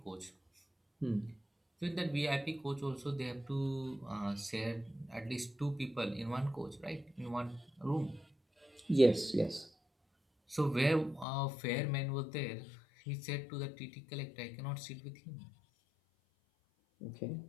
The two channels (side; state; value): right; drops out; at 11.2 s